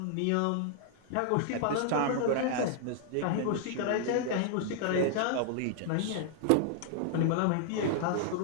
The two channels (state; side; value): different; both; correlation -0.01